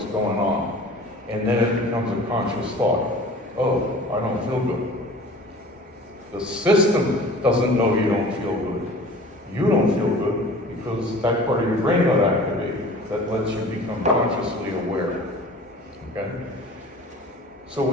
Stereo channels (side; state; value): both; normal; correlation 0.43